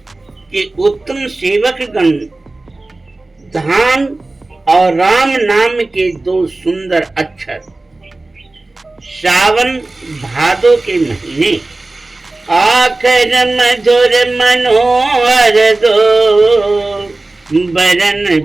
कि उत्तम सेवक गण धाम और राम नाम के दो सुंदर अक्षर श्रावण भादो के महीने आखर मधुर मनोहर दो,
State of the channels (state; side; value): quieter; left; 3.0 dB